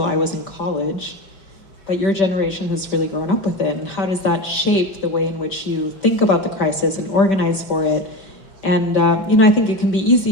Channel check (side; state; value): right; late; 5.1 ms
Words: I was in college, but your generation has really grown up with it. And how does that shape the way in which you think about the crisis and organize for it? And, you know, I think it can be